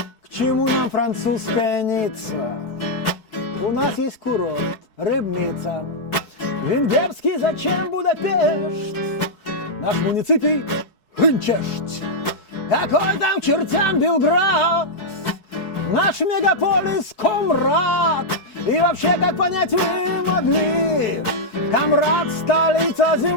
К чему нам французская Ницца? У нас есть курорт, Рыбница. Венгерский зачем Будапешт? Наш муниципий Хынчешт. Какой там к чертям Белград? Наш мегаполис Комрад. И вообще, как понять вы могли? Комрад — столица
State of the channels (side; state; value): right; late; 4.6 ms